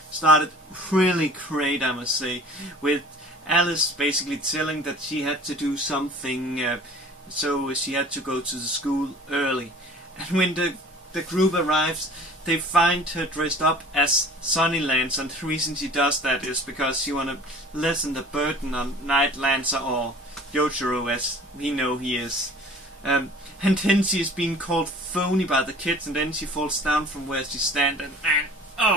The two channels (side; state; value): both; normal; correlation 0.47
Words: started really great, I must say, with Alice basically telling that she had to do something, so she had to go to the school early. And when the group arrives, they find her dressed up as Sunny Lancer, and the reason she does that is because she want to lessen the burden on Night Lancer, or Yojiro as we know he is. And then she is being called phony by the kids, and then she falls down from where she stands, and